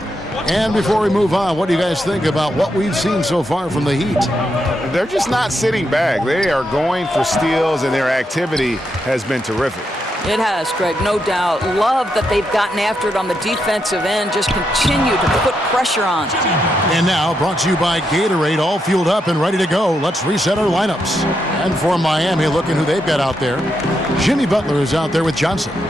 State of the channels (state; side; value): normal; both; correlation 0.82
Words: And before we move on, what do you guys think about what we've seen so far from the Heat? They're just not sitting back. They are going for steals, and their activity has been terrific. It has, Greg, no doubt. Love that they've gotten after it on the defensive end. Just continue to put pressure on. And now, brought to you by Gatorade, all fueled up and ready to go. Let's reset our lineups. And for Miami, looking who they've got out there. Jimmy Butler is out there with Johnson.